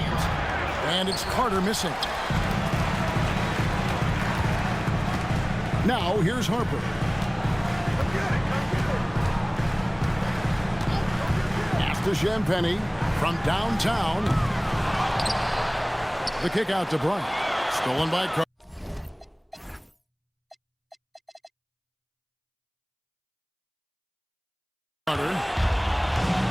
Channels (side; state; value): both; identical; correlation 1.00